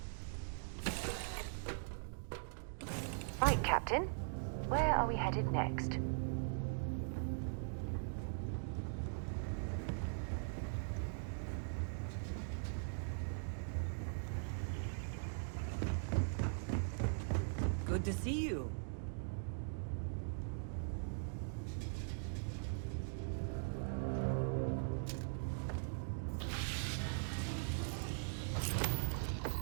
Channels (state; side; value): silent; left; digital silence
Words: Right, Captain. Where are we headed next? Good to see you.